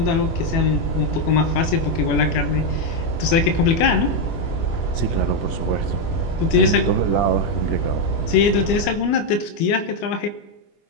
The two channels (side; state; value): right; late; 24 ms